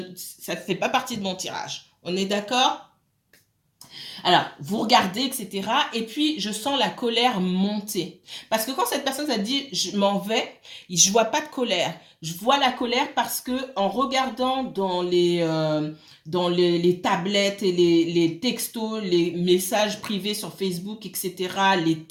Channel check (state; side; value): identical; both; correlation 1.00